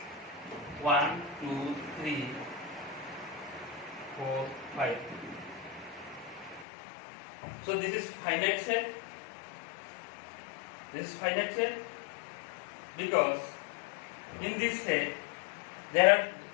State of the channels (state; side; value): drops out; right; at 6.7 s